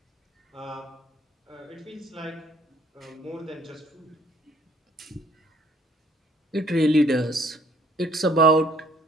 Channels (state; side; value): normal; both; correlation 0.60